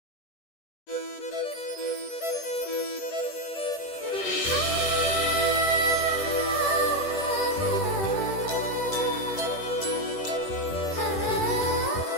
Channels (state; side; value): late; right; 10 ms